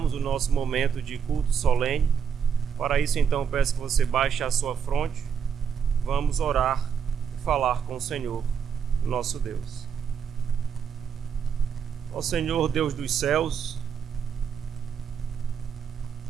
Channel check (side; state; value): left; quieter; 7.2 dB